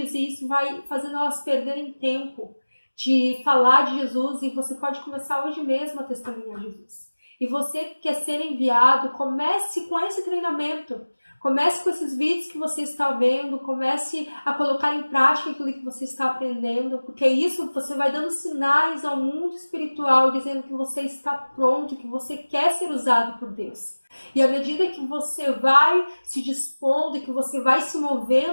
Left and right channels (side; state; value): both; inverted; correlation -1.00